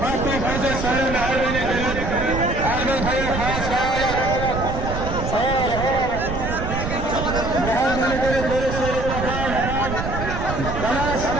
Hakkı Hazret Sayın Ermeni Devlet Ahmet Hayır Has Kaya Muhammed'in Devlet Sayın Bakan Banas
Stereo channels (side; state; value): right; noise; rumble, 4 dB below the sound